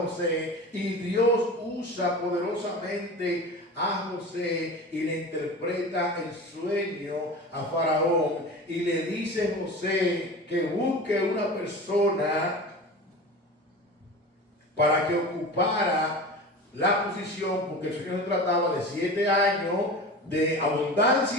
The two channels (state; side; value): normal; both; correlation 0.33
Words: y Dios usa poderosamente a José y le interpreta el sueño a faraón y le dice a José que busque una persona para que ocupara la posición, porque el sueño se trataba de 7 años de